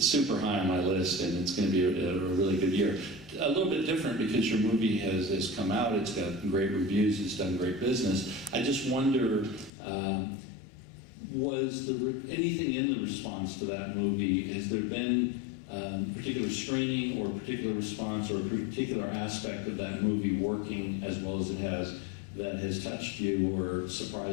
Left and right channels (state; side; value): drops out; right; at 9.7 s